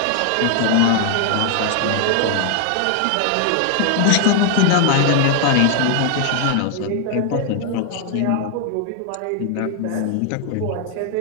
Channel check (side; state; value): both; different; correlation 0.00